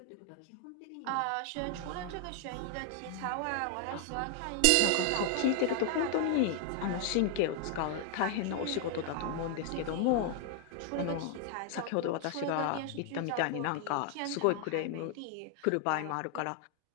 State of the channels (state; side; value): different; both; correlation 0.00